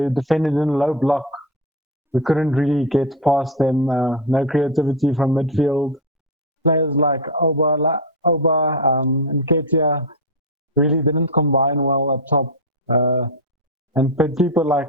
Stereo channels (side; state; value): both; normal; correlation 0.11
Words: defended in a low block. We couldn't really get past them. No creativity from midfield. Players like and Ketia really didn't combine well up top. And people like